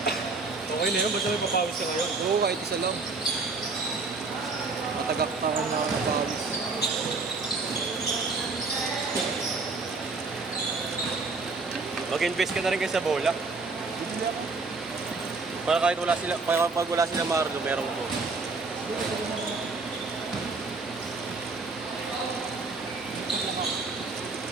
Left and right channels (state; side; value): quieter; left; 4.0 dB